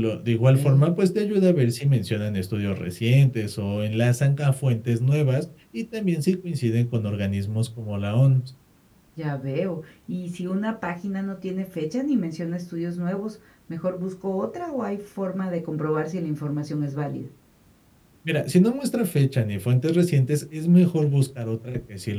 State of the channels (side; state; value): both; identical; correlation 1.00